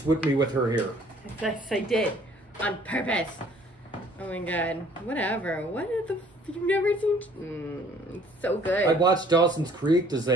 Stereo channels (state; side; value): normal; both; correlation 0.57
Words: whipped me with her hair. Yes, I did. On purpose. Oh my god. Whatever. What the you've never seen? It's so good. I watched Dawson's Creek. Does